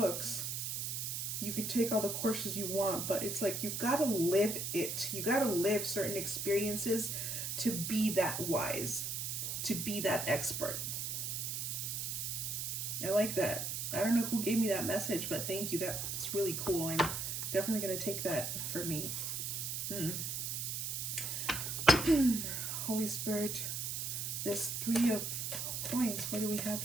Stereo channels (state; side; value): noise; right; hiss, 2 dB below the sound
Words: You can take all the courses you want, but it's like, you gotta live it. You gotta live certain experiences to be that wise, to be that expert. I like that. I don't know who gave me that message, but thank you. That's really cool. I'm definitely going to take that for me. Holy Spirit, this 3 of coins. What do we have